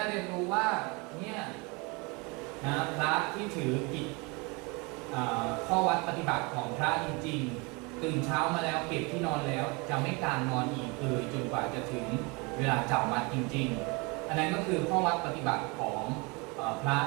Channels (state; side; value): quieter; left; 28.5 dB